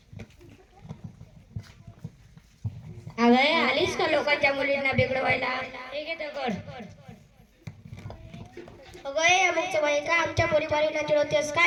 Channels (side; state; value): both; identical; correlation 1.00